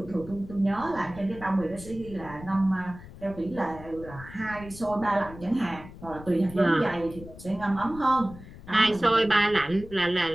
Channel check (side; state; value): left; noise; rumble, 16 dB below the sound